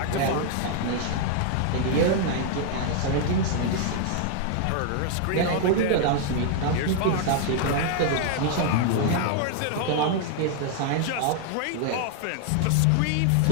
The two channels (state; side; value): different; both; correlation 0.00